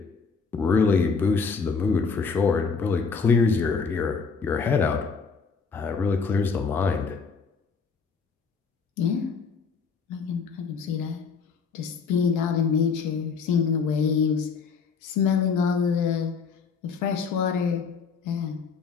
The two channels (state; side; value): quieter; right; 5.3 dB